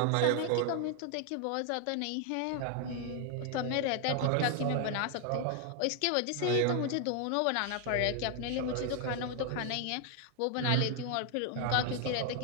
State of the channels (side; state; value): both; different; correlation 0.00